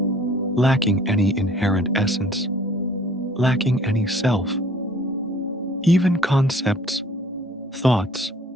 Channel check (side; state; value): both; normal; correlation 0.54